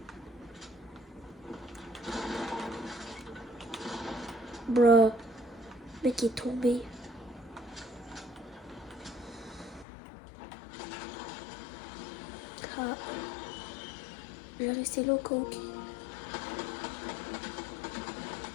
Bruh. Le mec est tombé. Ah. Je vais rester là au coq.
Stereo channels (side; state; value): right; drops out; at 9.9 s